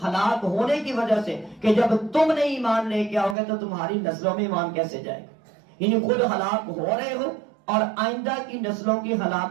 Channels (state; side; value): drops out; left; at 3.4 s